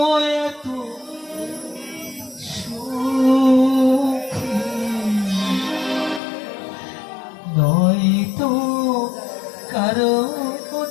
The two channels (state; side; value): drops out; right; at 6.2 s